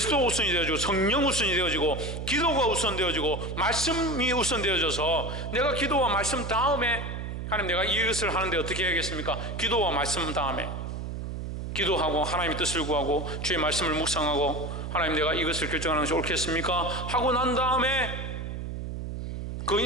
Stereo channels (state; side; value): noise; right; hum, 6 dB below the sound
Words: 우선이 되어지고 성령 우선이 되어지고 기도가 우선되어지고 말씀이 우선되어져서 내가 기도와 말씀 다음에 하나님 내가 이것을 하는데 어떻게 해야겠습니까? 기도와 말씀 다음에 기도하고 하나님의 뜻을 구하고 주의 말씀을 묵상하고 하나님 내가 이것을 결정하는 것이 옳겠습니까? 하고 난 다음에 그